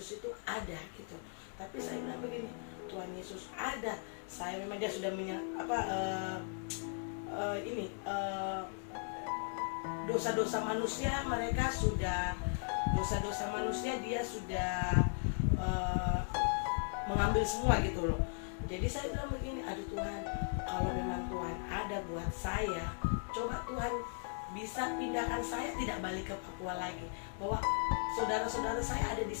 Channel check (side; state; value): right; silent; 53 dB below the other